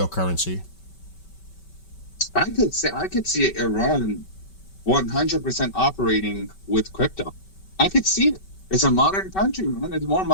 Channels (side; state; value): right; late; 5.2 ms